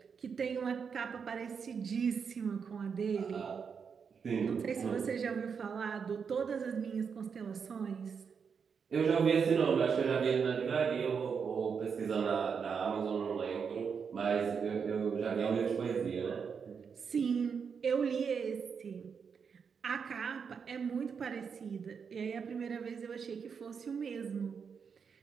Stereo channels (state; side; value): quieter; left; 6.3 dB